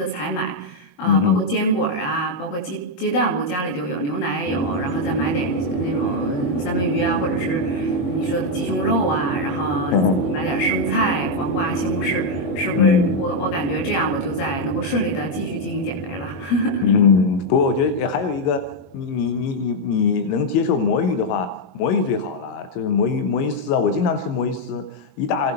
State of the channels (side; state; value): right; late; 22 ms